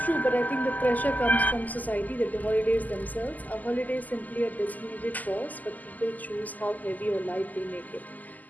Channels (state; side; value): late; right; 0.081 ms